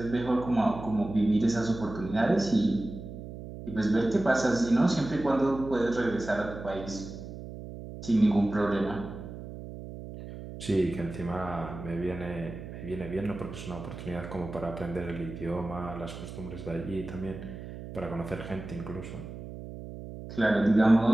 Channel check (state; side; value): noise; right; hum, 11 dB below the sound